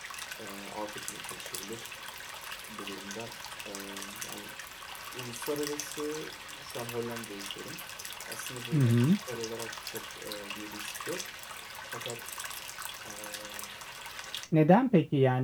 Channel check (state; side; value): identical; both; correlation 1.00